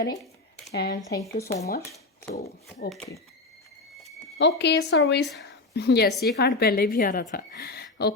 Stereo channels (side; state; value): right; quieter; 3.3 dB